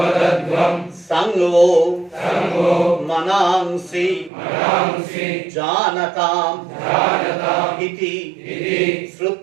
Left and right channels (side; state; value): left; drops out; at 4.3 s